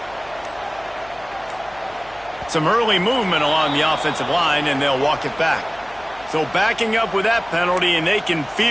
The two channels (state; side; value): noise; left; hum, 25 dB below the sound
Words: Some early movement along the offensive line, and they'll walk it back. So backing up with that penalty, and they can